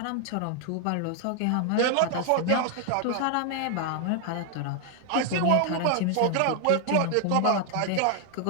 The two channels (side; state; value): both; different; correlation 0.00